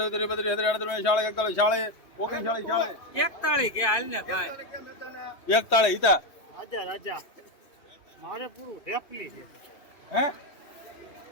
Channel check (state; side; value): late; right; 2.8 ms